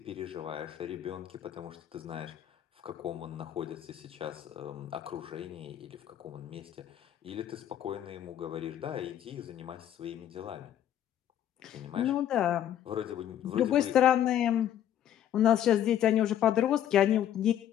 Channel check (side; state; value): right; quieter; 10.9 dB